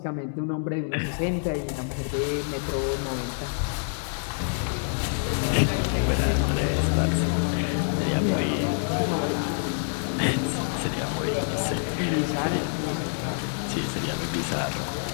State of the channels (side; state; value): right; silent; digital silence